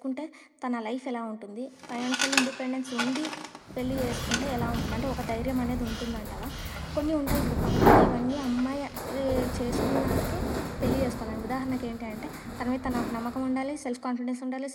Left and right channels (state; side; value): identical; both; correlation 1.00